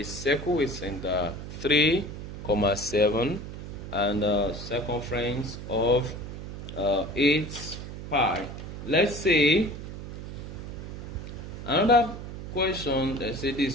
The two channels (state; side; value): noise; right; hum, 9 dB below the sound